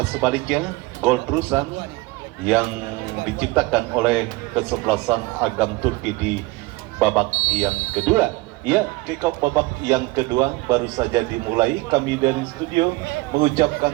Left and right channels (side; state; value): left; quieter; 22.3 dB